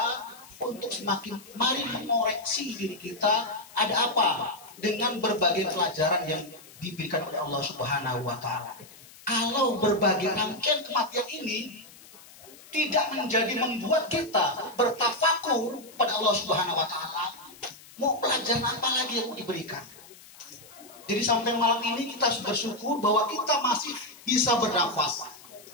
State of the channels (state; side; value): noise; left; hiss, 21 dB below the sound